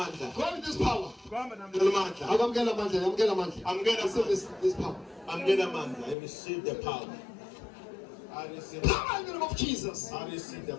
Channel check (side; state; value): right; drops out; at 6.2 s